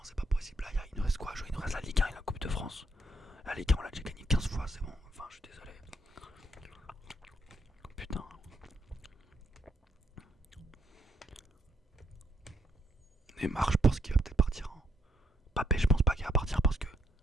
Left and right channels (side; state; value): both; normal; correlation 0.73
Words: c'est pas possible. Là, il nous reste quoi à jouer? Il nous reste la Ligue 1 et la Coupe de France. La Ligue 1, on l'a déjà gagné 15 fois, c'est bon. Enfin, je suis désolé. Putain. Neymar, je pense qu'il va peut-être partir. Hein. Mbappé, je pense pas qu'il va partir parce que